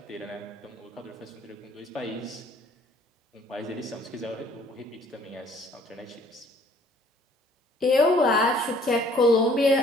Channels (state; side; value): normal; both; correlation 0.58